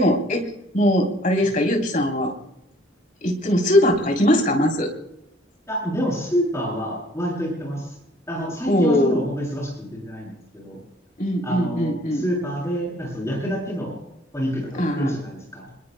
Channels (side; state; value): both; normal; correlation 0.58